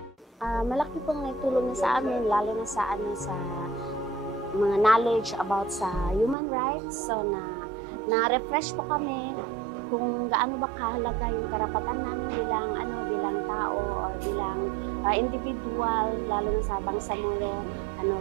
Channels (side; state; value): left; drops out; at 6.4 s